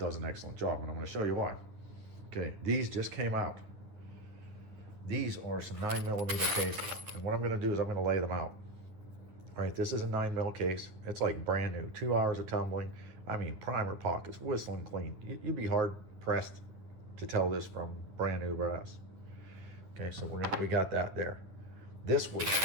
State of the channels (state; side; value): late; left; 10 ms